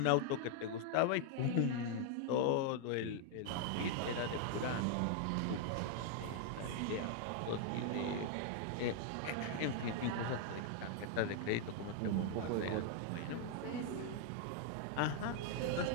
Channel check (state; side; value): different; both; correlation 0.00